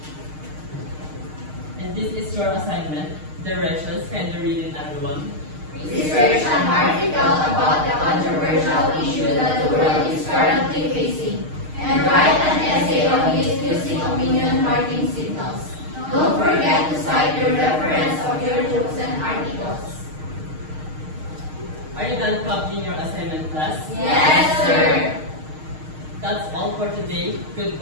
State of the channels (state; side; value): late; left; 6.5 ms